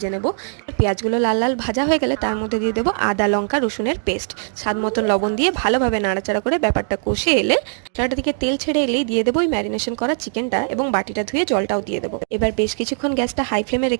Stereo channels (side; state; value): left; silent; 65 dB below the other